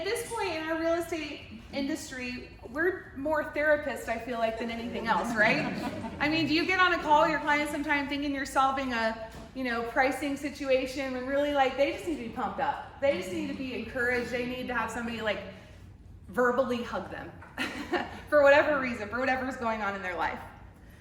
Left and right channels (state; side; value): identical; both; correlation 1.00